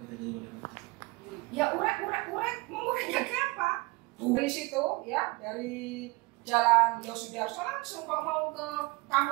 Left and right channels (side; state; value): left; quieter; 25.1 dB